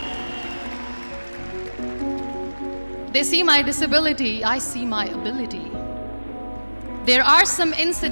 They see my disability, I see my ability. There are some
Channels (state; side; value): inverted; both; correlation -1.00